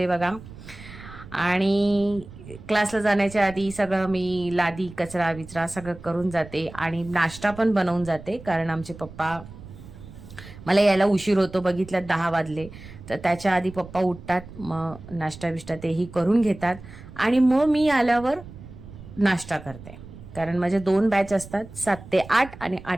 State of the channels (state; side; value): noise; right; rumble, 16 dB below the sound